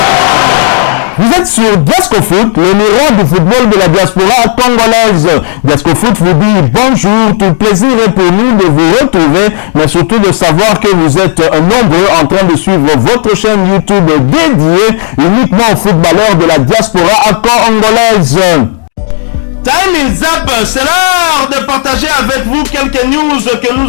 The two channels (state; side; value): silent; right; 75 dB below the other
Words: Vous êtes sur Diasco Foot, le miroir du football de la diaspora congolaise. Diasco Foot vous dit bonjour, tout plaisir est pour nous de vous retrouver, mais surtout de savoir que vous êtes nombreux en train de suivre votre chaîne YouTube dédiée uniquement aux footballeurs de la diaspora congolaise. Time is up, c'est l'heure de partager avec vous quelques news que